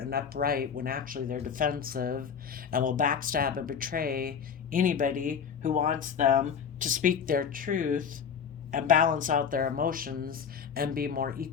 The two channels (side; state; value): right; quieter; 7.1 dB